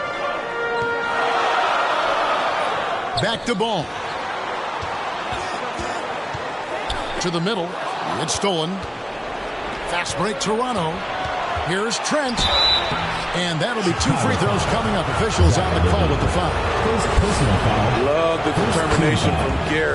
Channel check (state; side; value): identical; both; correlation 1.00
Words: Back to Ball. To the middle. It's stolen. Fast break Toronto. Here's Trent. And that'll be two free throws coming up. Officials on the call with the foul. Love the determination from